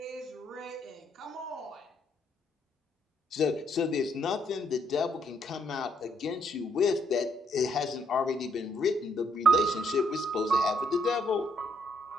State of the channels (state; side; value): normal; both; correlation 0.72